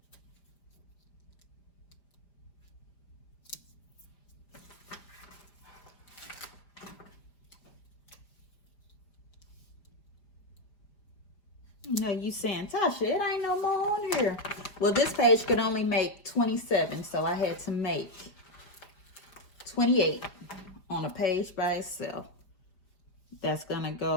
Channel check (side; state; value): right; late; 5.0 ms